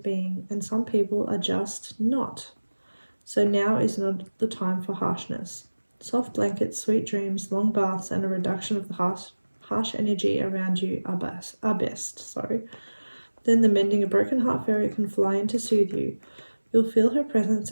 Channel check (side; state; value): both; inverted; correlation -1.00